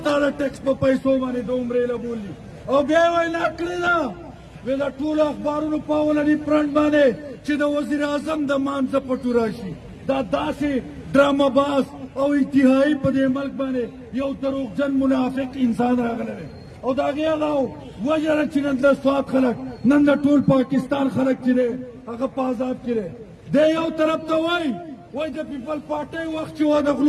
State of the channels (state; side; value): identical; both; correlation 1.00